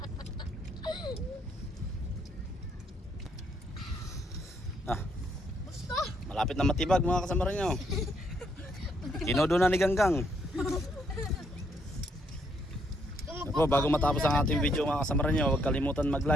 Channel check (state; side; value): normal; both; correlation 0.73